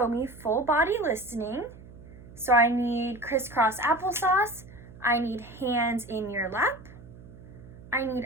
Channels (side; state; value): right; noise; hum, 18 dB below the sound